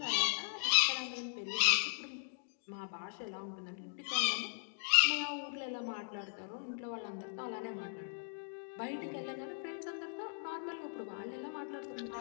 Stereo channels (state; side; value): silent; right; digital silence